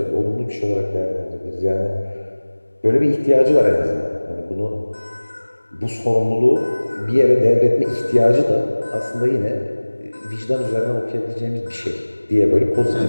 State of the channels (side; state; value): both; inverted; correlation -1.00